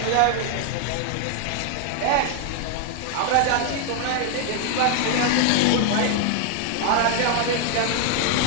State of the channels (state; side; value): different; both; correlation 0.00